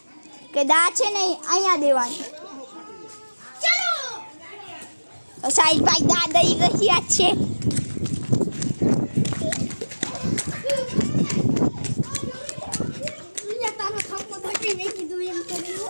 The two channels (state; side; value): inverted; both; correlation -1.00